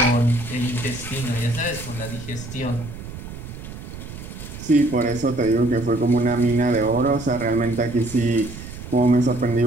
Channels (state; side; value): noise; right; rumble, 12 dB below the sound